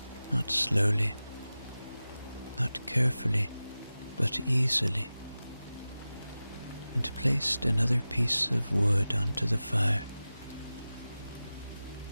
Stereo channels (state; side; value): inverted; both; correlation -0.95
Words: Not slowly, not carefully, but easily, and placed another piece of wood onto the fire.